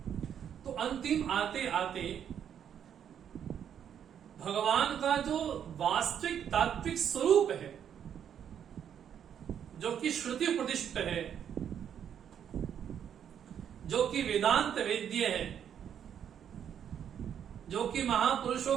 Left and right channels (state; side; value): quieter; left; 8.9 dB